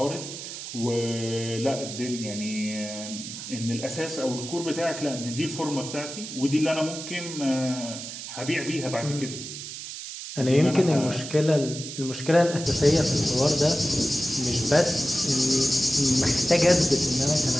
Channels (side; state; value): right; noise; hiss, 9 dB below the sound